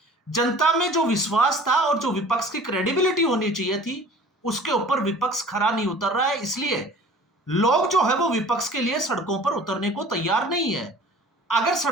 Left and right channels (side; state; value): both; normal; correlation 0.46